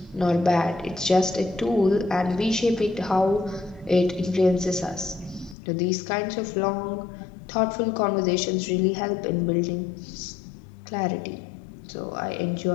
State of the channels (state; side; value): drops out; right; at 5.6 s